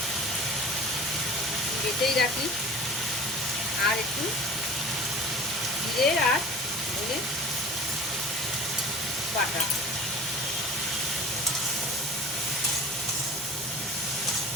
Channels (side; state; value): both; normal; correlation 0.41